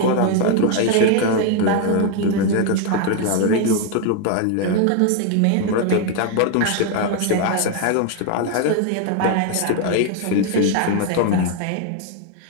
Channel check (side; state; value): both; different; correlation 0.01